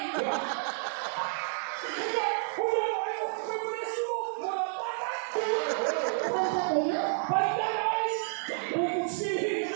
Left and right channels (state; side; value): silent; left; digital silence